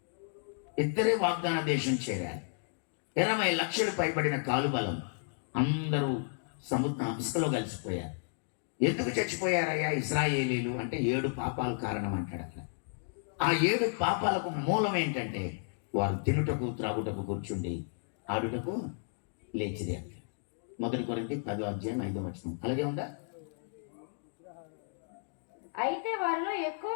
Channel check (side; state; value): right; silent; digital silence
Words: 2 వాగ్దాన దేశం చేరారు. 20 లక్షలు పైబడిన కాలుబలం, అందరూ ఇసుకలో కలిసిపోయారు. ఎందుకు చచ్చిపోయారయ్యా ఇశ్రాయేలీయులు అంటే 7 పాపాలు కారణం అంటాడు అక్కడ. ఆ 7 పాపాలకు మూలం ఏంటంటే వారు తినుటకు త్రాగుటకు కూర్చుండి ఆడుటకు లేచిరి అంటాడు. 1 కొరింథీ 10వ అధ్యాయం 5వ వచనం అలాగే ఉందా? అయితే వారిలో ఎక్కువ